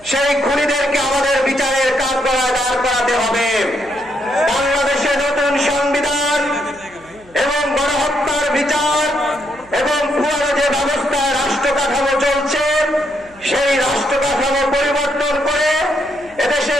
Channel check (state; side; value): noise; right; hum, 27 dB below the sound